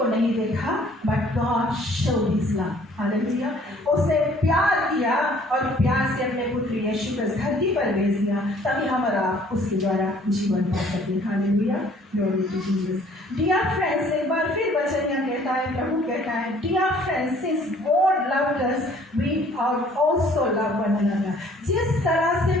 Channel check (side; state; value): both; normal; correlation 0.57